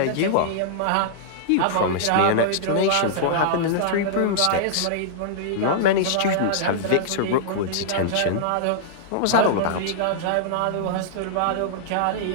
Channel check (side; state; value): both; different; correlation -0.02